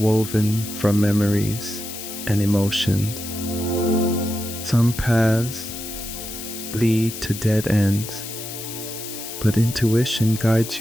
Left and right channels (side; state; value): left; noise; hiss, 9 dB below the sound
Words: from memories and emotions. Some paths lead to dead ends, but intuition guides